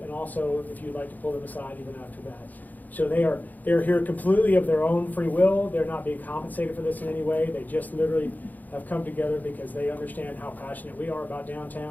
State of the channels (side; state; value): right; late; 0.083 ms